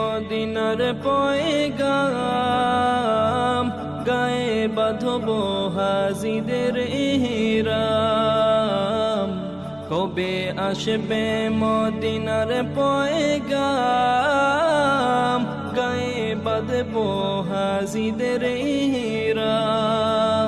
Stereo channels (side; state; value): left; noise; hum, 30 dB below the sound